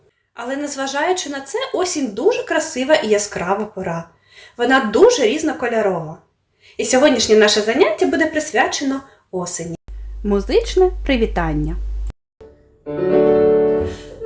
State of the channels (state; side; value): identical; both; correlation 1.00